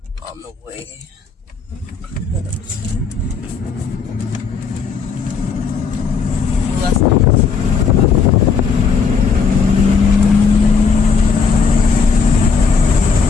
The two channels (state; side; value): quieter; right; 5.4 dB